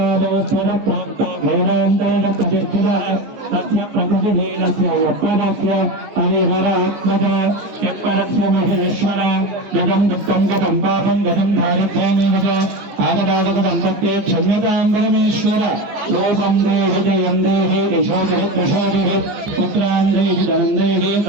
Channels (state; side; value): late; left; 14 ms